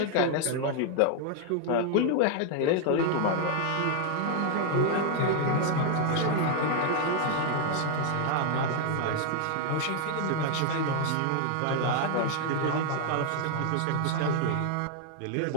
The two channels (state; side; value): different; both; correlation 0.00